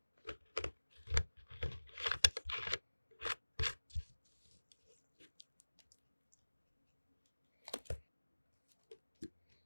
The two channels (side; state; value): both; inverted; correlation -1.00